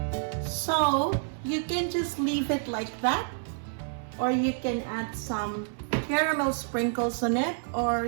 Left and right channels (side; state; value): left; silent; 59 dB below the other